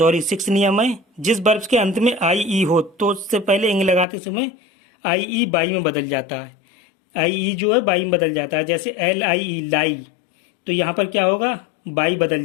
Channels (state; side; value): drops out; right; at 4.0 s